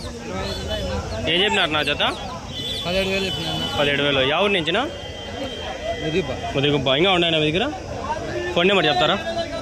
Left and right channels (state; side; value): identical; both; correlation 1.00